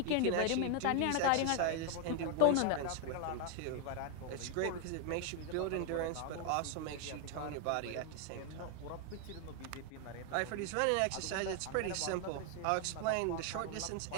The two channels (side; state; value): both; different; correlation 0.00